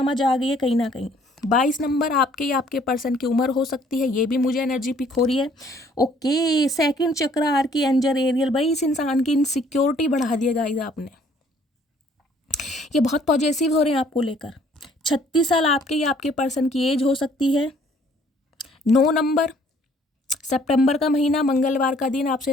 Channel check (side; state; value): both; normal; correlation 0.60